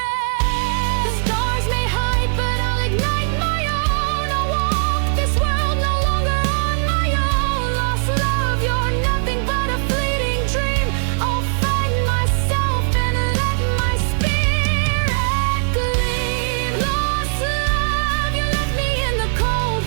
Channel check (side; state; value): left; silent; digital silence